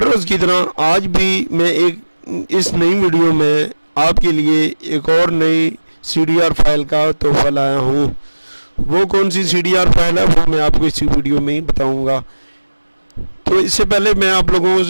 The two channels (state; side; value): inverted; both; correlation -1.00